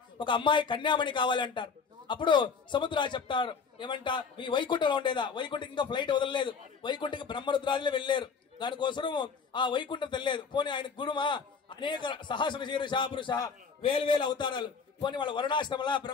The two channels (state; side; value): quieter; right; 5.6 dB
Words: ఒక అమ్మాయి కన్యామణి కావాలి అంటారు. అప్పుడు సముద్రాలు చెప్తారు ఏమంట, మీ వైకుంఠంలో ఉండేదా? వైకుంఠకి ఇంకా ఫ్లైట్ వదలలేదు, వైకుంఠకి బ్రహ్మరుద్రాదులే వెళ్ళారు, దానికోసం ఆ వైకుంఠం తెలియలేదు. పోనీ ఆయన గురుమా అనేక సహస్ర శీర్ష పురుష వేలు అవతారాలు, పోనీ వాళ్ళ వరుణాశ్రమల